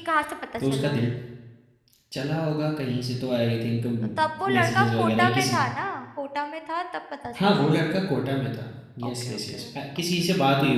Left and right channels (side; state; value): both; identical; correlation 1.00